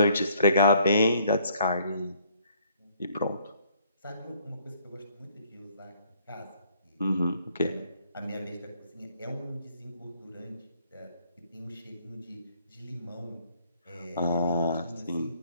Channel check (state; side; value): inverted; both; correlation -0.63